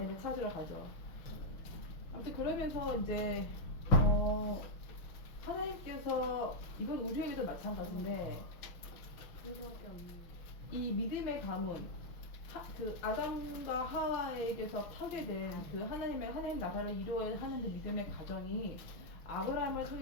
찾으러 가죠. 아무튼 그러면서 이제 하나님께서 이건 우리에게도 마찬가지인데 이 믿음의 가문 그 아담과 하와에게서 파괴된 그 하나님 나라를 이루어야 하는 그 믿음의 가정이 아브라함을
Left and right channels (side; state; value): right; late; 6.1 ms